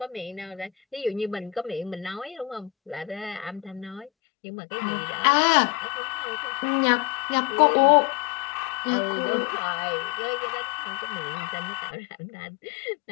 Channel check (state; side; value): drops out; right; at 4.1 s